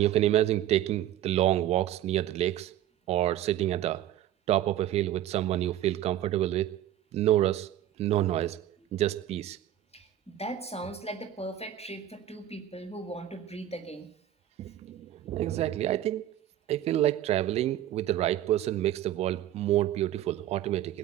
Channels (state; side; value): quieter; left; 12.4 dB